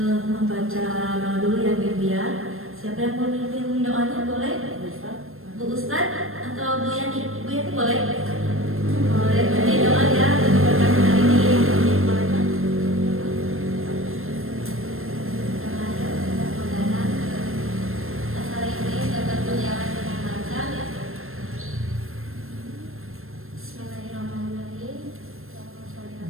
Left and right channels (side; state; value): left; late; 0.61 ms